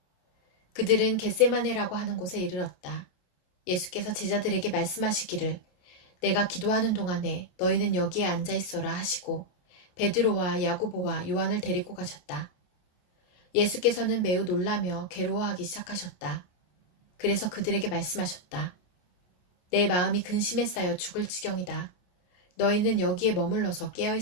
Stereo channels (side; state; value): right; late; 28 ms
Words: 그들은 겟세마네라고 하는 곳에 이르렀다. 예수께서 제자들에게 말씀하시기를 내가 기도하는 동안에 너희는 여기에 앉아 있어라 하시고 베드로와 야고보와 요한을 데리고 가셨다. 예수께서는 매우 놀라며 괴로워하기 시작하셨다. 그래서 그들에게 말씀하셨다. 내 마음이 근심에 쌓여 죽을 지경이다. 너희는 여기에 머물러서